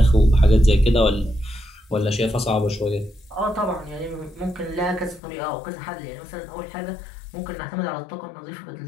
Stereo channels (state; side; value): drops out; right; at 5.2 s